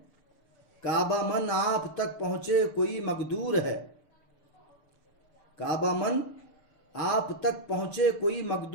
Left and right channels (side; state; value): right; late; 6.7 ms